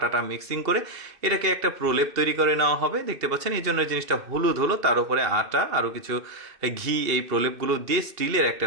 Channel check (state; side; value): late; left; 2.7 ms